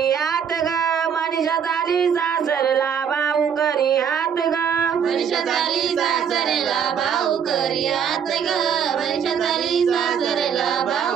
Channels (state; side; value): quieter; left; 7.7 dB